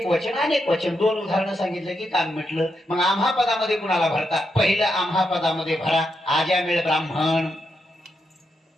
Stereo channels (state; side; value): normal; both; correlation 0.83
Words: वचन अनेक वचन. 2 उदाहरणं सांगितलं की काम म्हटलं. मग आम्हा पदामध्ये कुणाला भरता? पहिलं आम्हा पदामध्ये भरा आज्यामेळ ब्राह्मण.